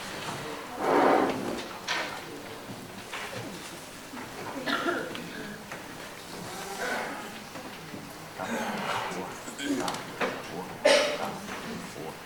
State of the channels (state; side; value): identical; both; correlation 1.00